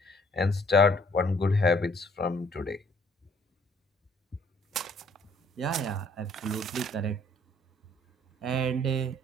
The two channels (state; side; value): normal; both; correlation 0.62